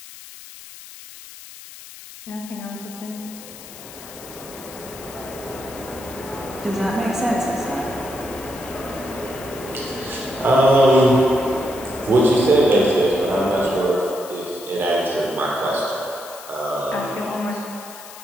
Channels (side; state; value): left; noise; hiss, 16 dB below the sound